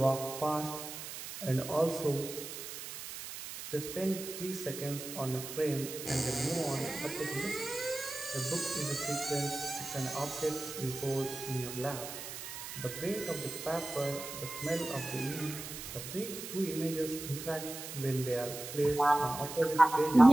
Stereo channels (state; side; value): noise; right; hiss, 9 dB below the sound